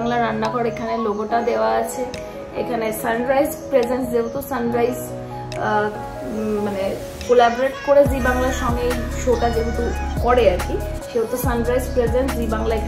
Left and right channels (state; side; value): identical; both; correlation 1.00